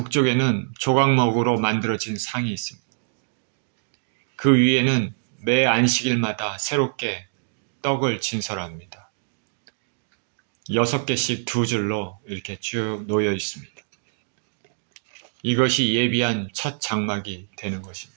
조각목으로 만들어진 상이 있습니다. 그 위에는 매 안식일마다 새롭게 떡을 진설합니다. 6개씩 두 줄로 이렇게 쭉 놓여 있습니다. 이것이 예비한 첫 장막이 되는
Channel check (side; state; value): left; silent; digital silence